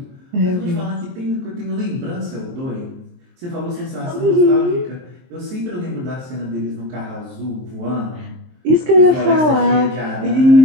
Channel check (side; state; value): left; late; 23 ms